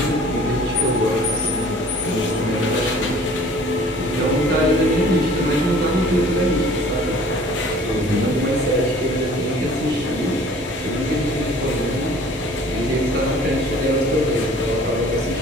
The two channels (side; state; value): both; normal; correlation 0.50